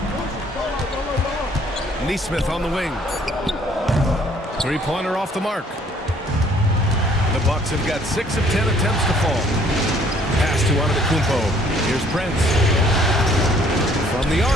Nesmith on the wing. 3-pointer off the mark. The Bucks have got 6 of 10 attempts to fall. Pass to Antetokounmpo. Here's Prince. From the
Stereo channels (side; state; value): both; normal; correlation 0.61